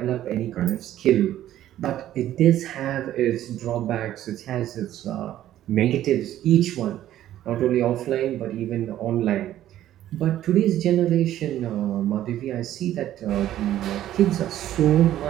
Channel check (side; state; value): left; quieter; 12.7 dB